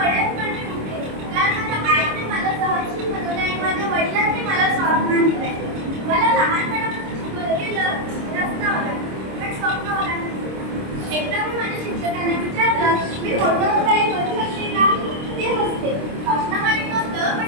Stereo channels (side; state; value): left; late; 26 ms